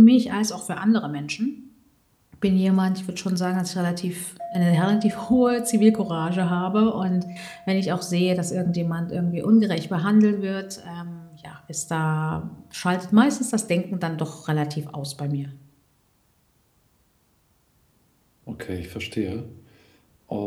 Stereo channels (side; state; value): both; identical; correlation 1.00